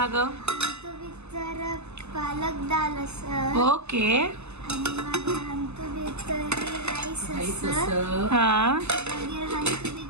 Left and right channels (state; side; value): late; left; 0.80 ms